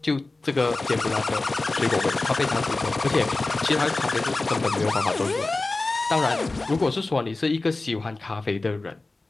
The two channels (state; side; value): quieter; right; 3.2 dB